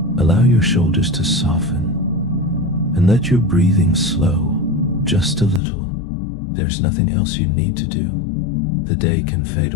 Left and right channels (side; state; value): right; drops out; at 5.6 s